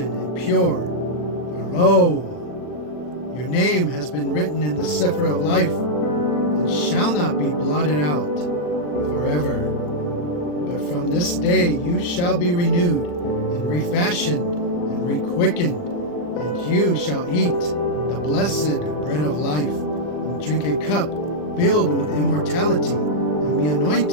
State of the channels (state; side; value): late; right; 40 ms